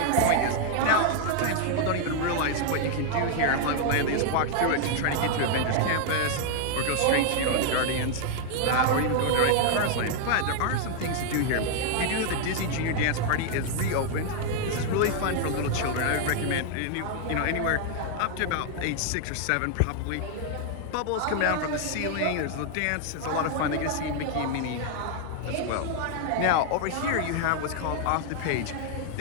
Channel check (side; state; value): both; different; correlation 0.00